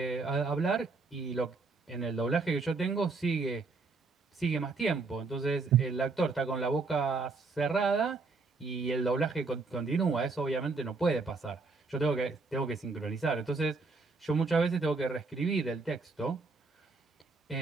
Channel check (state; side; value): quieter; left; 4.0 dB